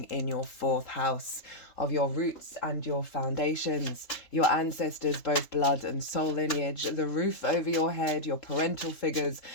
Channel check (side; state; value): right; late; 3.4 ms